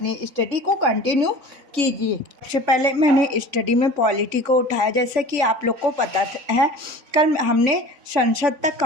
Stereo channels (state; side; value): late; left; 3.5 ms